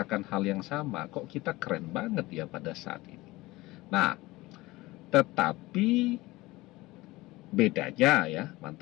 hal yang sama, kok kita keren banget ya pada saat ini. Nah, tetapi bedanya ya,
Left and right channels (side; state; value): right; quieter; 19.9 dB